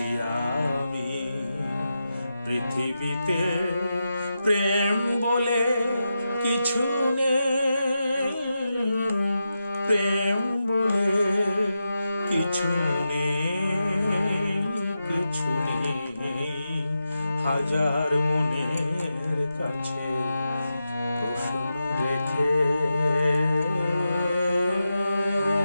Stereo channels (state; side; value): inverted; both; correlation -0.89